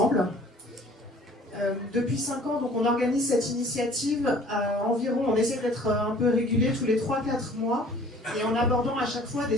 Depuis 5 ans, donc, on organise cette initiative environ, on essaie d'être un peu régulier tous les 3-4 mois, et en abordant à chaque fois des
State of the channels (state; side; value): normal; both; correlation 0.52